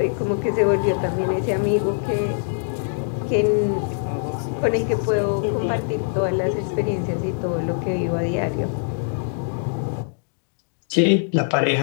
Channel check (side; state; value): right; silent; digital silence